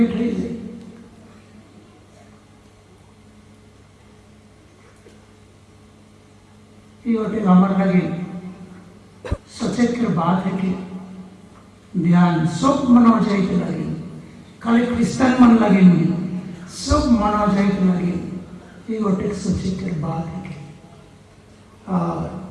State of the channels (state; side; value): identical; both; correlation 1.00